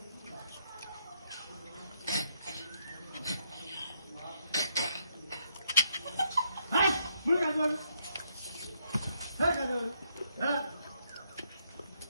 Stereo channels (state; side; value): inverted; both; correlation -0.74